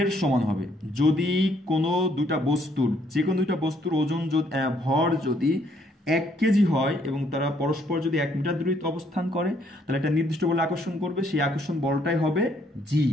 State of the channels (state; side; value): normal; both; correlation 0.68